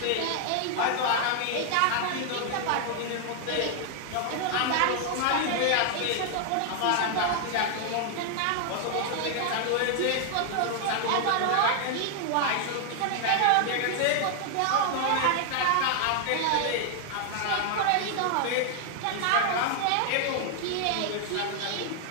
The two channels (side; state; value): both; different; correlation 0.00